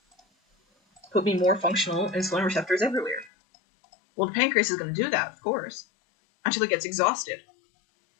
Put me more functional insulin receptors everywhere. Well, the pancreas is going to do that, of course, until it gets exhausted.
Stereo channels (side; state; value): right; drops out; at 3.3 s